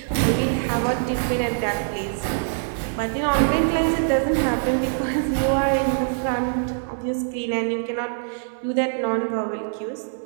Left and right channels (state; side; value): silent; left; 62 dB below the other